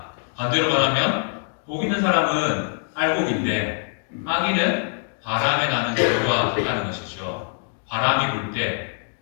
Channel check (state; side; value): silent; right; digital silence